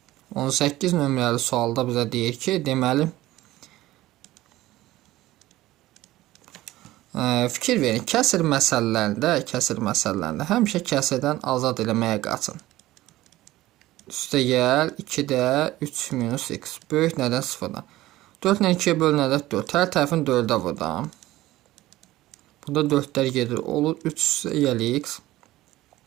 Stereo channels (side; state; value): left; quieter; 16.6 dB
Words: On 18 nömrəli sualda bizə deyir ki, deməli, fikir verin, kəsir məsələlərində həmişə kəsirdən azad eləməyə qaçın. Üstə gəl 2-də 3 minus x böyük nədən 0-dan. 4 ilə 2-yə bölünədə 4. Hər tərəfini 4-ə vurdam. Burada 4-lər gedir. Olur 3 üstə gəl x.